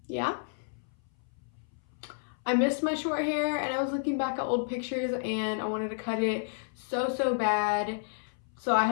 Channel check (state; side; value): silent; right; 57 dB below the other